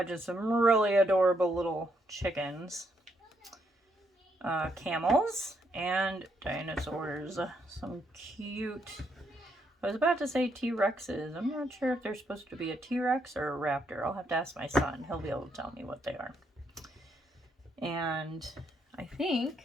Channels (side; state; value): both; normal; correlation 0.76